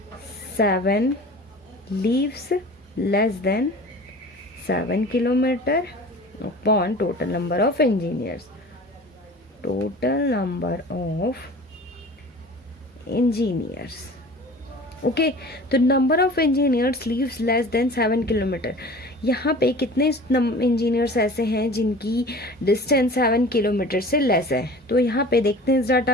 7 leaves less than 7 kilometer upon total number of engineers, okay. तो number of engineers leaves less than 7 kilometre, यहाँ पे कितने engineers ऐसे हैं जिनकी distance 7 kilometre से less है, तो यहाँ पे देखते हैं इस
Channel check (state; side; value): normal; both; correlation 0.41